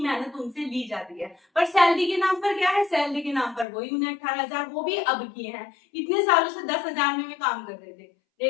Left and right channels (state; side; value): drops out; right; at 3.7 s